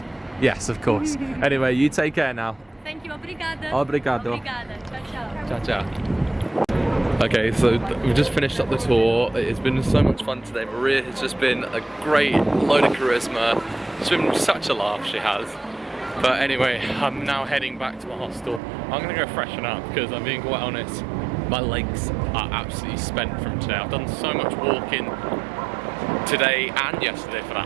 Yes, of course. Anyway, you take care now. Thank you. Obrigada. Obrigado. Obrigada. Ciao, ciao. Ciao, ciao. Okay, so we've just finished up the tour. It's been so much fun today. Maria has just been a great load of charisma. It's been such a laugh, she has. But anyway, I'm now heading back to my hostel. I'm gonna go freshen up because I'm being quite honest, my legs are absolutely spent from today. I've done so much walking today and yesterday for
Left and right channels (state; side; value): drops out; left; at 18.6 s